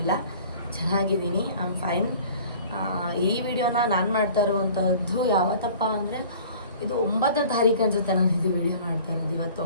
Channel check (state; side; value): inverted; both; correlation -0.47